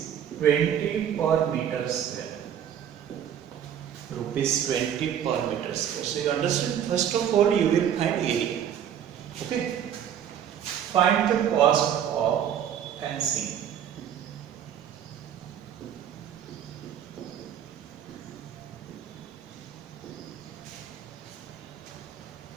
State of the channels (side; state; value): left; quieter; 9.3 dB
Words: 20 per meter square. Rupees 20 per meter square. So you understand? First of all, you will find area. Okay. Find the cost of fencing.